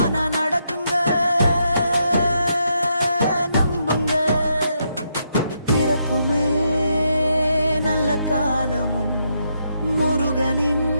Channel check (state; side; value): inverted; both; correlation -0.79